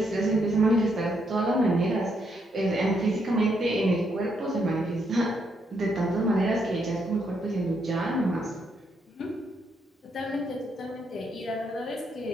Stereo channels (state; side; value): normal; both; correlation 0.76